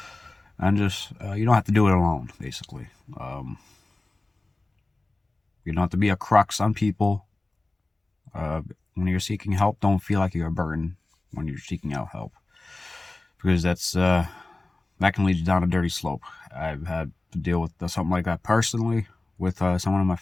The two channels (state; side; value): quieter; right; 3.0 dB